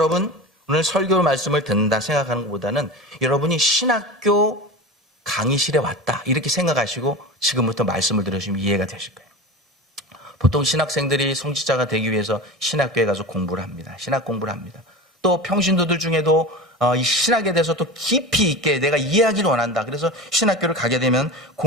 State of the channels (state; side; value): normal; both; correlation 0.30